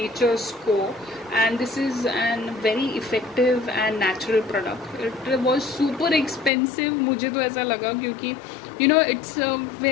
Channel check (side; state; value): right; drops out; at 6.5 s